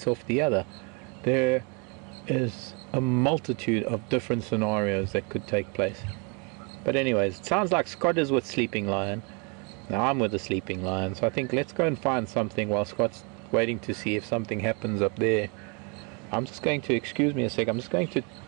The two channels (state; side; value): quieter; left; 33.7 dB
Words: off the other. There is a multitude of different scenarios that could take place. But anyways, it sounds like Scott is with Sleeping Lion. Now I'm with the Sleeping Lion, so I think let's go and find something while Scott's waiting to see if something happens up there. I'm just going to, excuse me a sec, I'm just going to